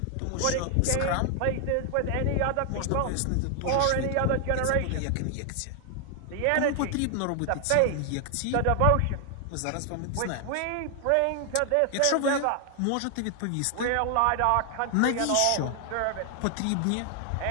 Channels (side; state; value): both; different; correlation 0.00